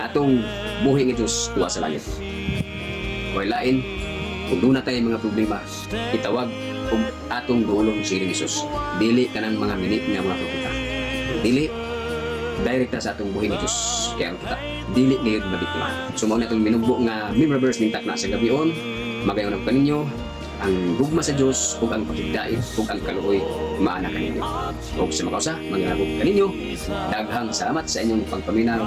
atong buhi nga Diyos tuwa sa langit. Kay lain kung doon na tayo mga problema itawag kung atong duolong si Jesus dili kanang mga mini nga mga propeta dili direkta sa atong buhi ni Diyos kaya kita dili ngayon mabiktima. So mao na itong minugbo nga member verse ning takna sa gabion magayon ang kaninyo ang gugma sa Diyos ug ang pakigdait ug ang kaluoy maana kaninyo ug sa makausa mangyabog kaninyo daghang salamat sa inyong pagpaminaw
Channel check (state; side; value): identical; both; correlation 1.00